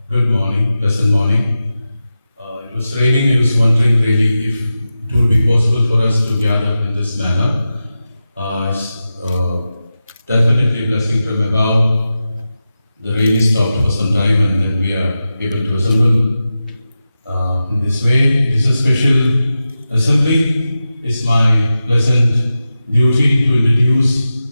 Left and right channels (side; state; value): both; inverted; correlation -0.92